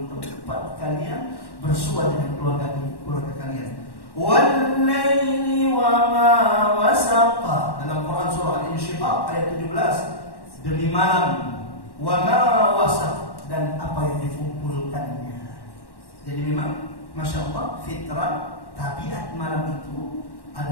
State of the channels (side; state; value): right; late; 1.1 ms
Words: tempat kalian bersua dengan keluarga kalian. Wal-laili wa ma wasaqa. Dalam Quran surah Al-Insyiqaq ayat 17, demi malam wa ma wasaq, dan apa yang dikumpulkannya. Jadi memang Masya Allah, fitrah, tabiat malam itu